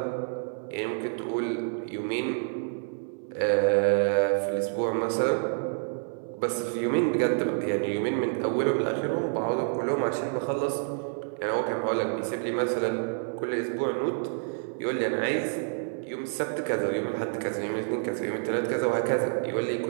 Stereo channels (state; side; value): silent; left; 59 dB below the other